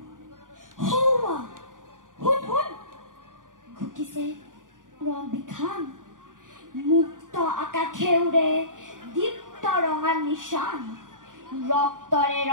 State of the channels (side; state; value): left; late; 0.89 ms